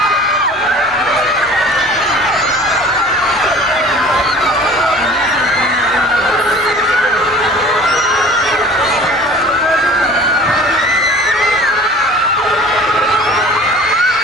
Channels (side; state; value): both; normal; correlation 0.45